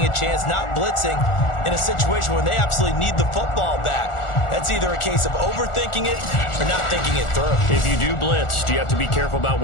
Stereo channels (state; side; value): late; right; 1.4 ms